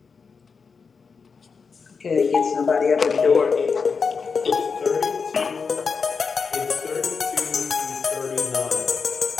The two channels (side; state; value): right; quieter; 5.3 dB